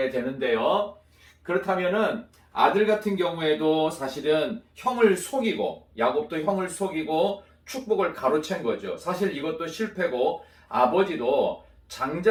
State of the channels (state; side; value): identical; both; correlation 1.00